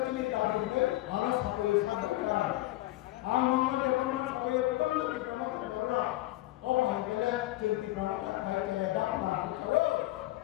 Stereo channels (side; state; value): right; quieter; 17.5 dB